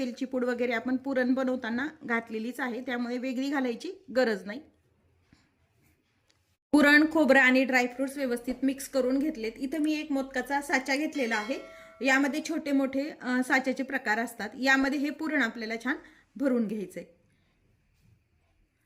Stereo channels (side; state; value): both; identical; correlation 1.00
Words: पूड वगैरे आपण पुरण बनवताना घातलेलीच आहे, त्यामुळे वेगळी घालायची गरज नाही। पुरण, खोबरं आणि ड्रायफ्रुट्स व्यवस्थित मिक्स करून घेतलेत। इथे मी एक मोदकाचा साचा घेतलेला आहे। यामध्ये छोटे मोठे साच्याचे प्रकार असतात। यामध्ये हे पुरण आपल्याला छान भरून घ्यायचे।